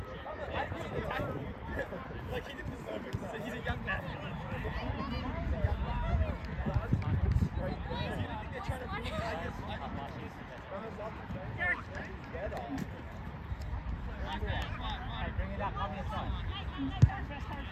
He's a young man. Bring it up, on your side.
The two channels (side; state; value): both; identical; correlation 1.00